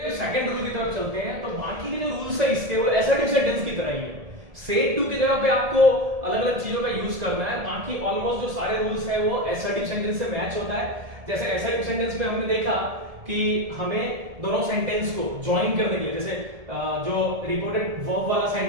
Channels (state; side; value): late; left; 1.7 ms